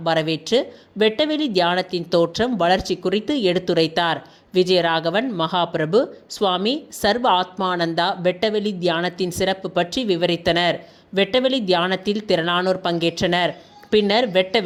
வரவேற்று வெட்டவெளி தியானத்தின் தோற்றம், வளர்ச்சி குறித்து எடுத்துரைத்தார். விஜயராகவன் மகாபிரபு சுவாமி சர்வ ஆத்மானந்தா வெட்டவெளி தியானத்தின் சிறப்பு பற்றி விவரித்தனர். வெட்டவெளி தியானத்தில் திரளானோர் பங்கேற்றனர். பின்னர்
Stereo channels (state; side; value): identical; both; correlation 1.00